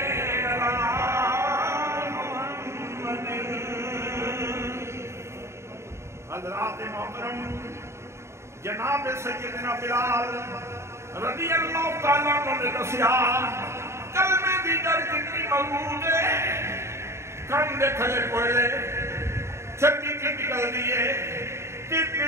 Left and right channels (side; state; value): left; late; 0.13 ms